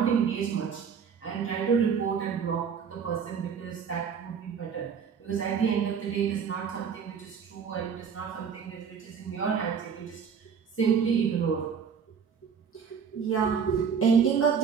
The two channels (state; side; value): quieter; left; 6.7 dB